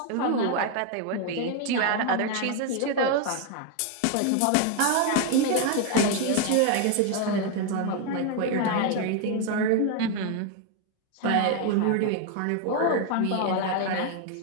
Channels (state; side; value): different; both; correlation 0.01